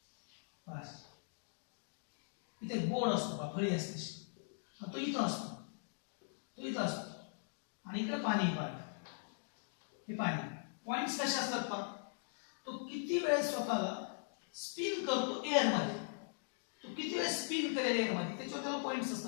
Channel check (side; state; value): right; silent; digital silence